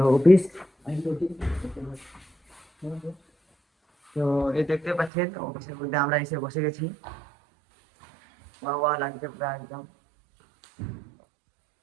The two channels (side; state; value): left; drops out; at 5.1 s